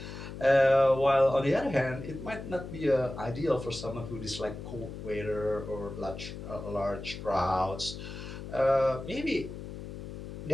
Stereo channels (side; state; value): left; noise; hum, 10 dB below the sound